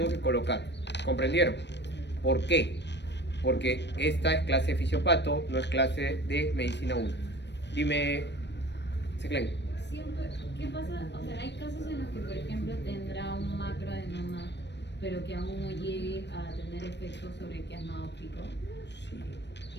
que colocar. ¿Comprendieron? ¿Por qué? Porque esta es clase de fisiopato, no es clase de medicina 1. Dime, Seclen. Siempre, ¿qué pasa? O sea, hay casos en los que, por ejemplo, tendrá un macroadenoma, pero que aún no llegue a tener efectos sobre el quiasma óptico. Sí.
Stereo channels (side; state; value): right; late; 0.50 ms